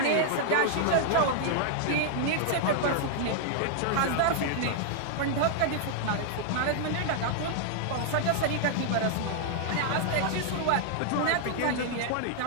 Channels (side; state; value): both; different; correlation -0.01